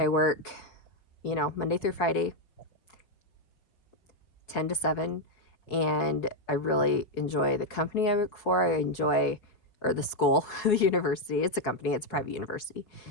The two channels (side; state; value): right; late; 5.0 ms